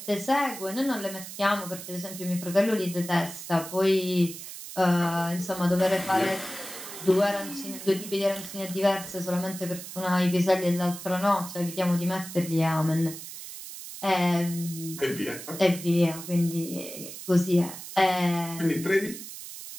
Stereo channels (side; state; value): right; noise; hiss, 11 dB below the sound